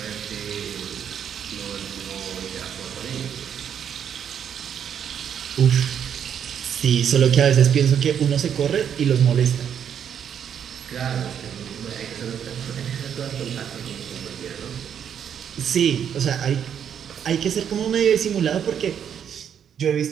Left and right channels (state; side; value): quieter; left; 8.5 dB